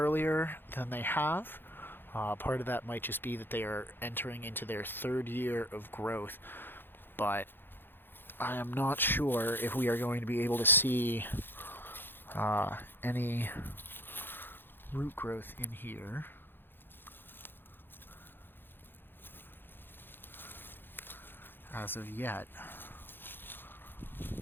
than they have. Part of that might just be that they are entering into their third year of growth, but I am not sure if we are going to be able to see any root growth in here. As of yet.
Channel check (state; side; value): late; right; 0.10 ms